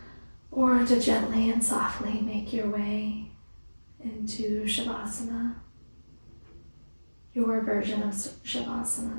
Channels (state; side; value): inverted; both; correlation -1.00